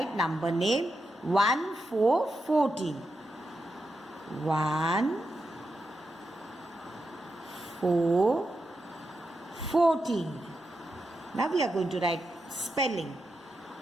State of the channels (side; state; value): both; normal; correlation 0.87